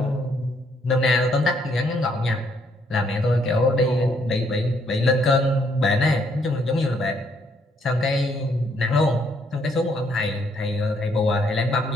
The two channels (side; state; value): both; normal; correlation 0.70